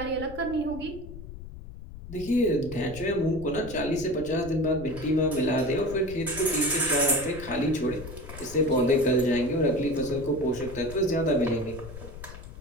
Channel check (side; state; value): left; noise; rumble, 13 dB below the sound